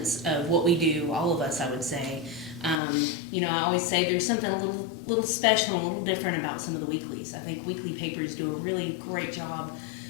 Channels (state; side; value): drops out; right; at 2.8 s